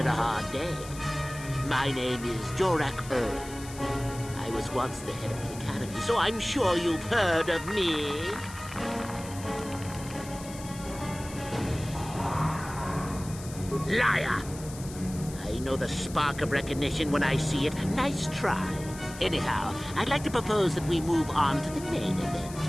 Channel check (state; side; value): noise; left; hiss, 15 dB below the sound